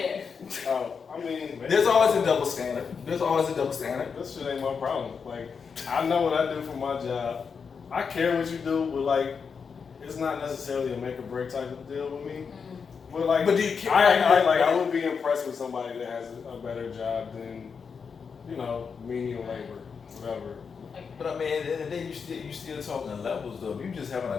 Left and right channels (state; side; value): quieter; right; 5.9 dB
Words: Oh, I mean, There's always a double standard. There's always a double standard. this shit ain't my problem. Like, I know what I do for my job. I care what you do, but like, it's not necessarily a make or break type of deal with me. But like, But do you care? I would be impressed with somebody that has a better job than, menial labor, whatever. But I mean, at the end of the day, you still talking levels though. If you just having